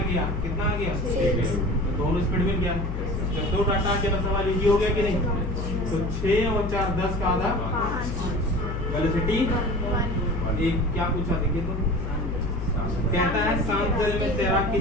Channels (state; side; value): noise; left; hum, 4 dB below the sound